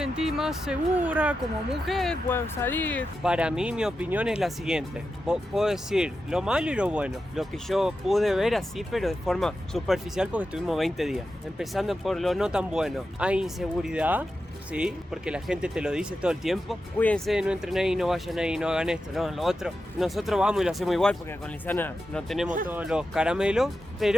más segura como mujer, puedo salir. Para mí, mi opinión es la siguiente. Puedo decir lo malo y lo bueno. Lo que yo pude ver así, pero de forma superficial porque estuvimos 20 días. Empezando por lo no tan bueno. Hay inseguridad, sí, porque la gente te lo dice todo el tiempo. Cuídense, no entren ahí, no vayan ahí, no hagan esto, no, lo otro. Nosotros vamos y lo hacemos igual porque con Lisana no tenemos todos los caramelos.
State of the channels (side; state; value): both; normal; correlation 0.90